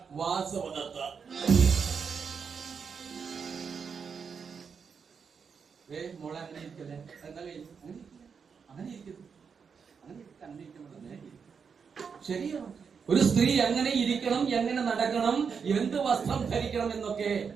വാസവദത്ത. മോളെ അങ്ങനെ ഇരിക്കല്ലേ, എന്താ അങ്ങനെ ഇരിക്കുന്നു, ശരിയാണ്. ഒരു സ്ത്രീ എങ്ങനെ ഇരിക്കണം, എങ്ങനെ നടക്കണം, എന്ത് വസ്ത്രം ധരിക്കണം എന്നൊക്കെ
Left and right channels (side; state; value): left; quieter; 6.1 dB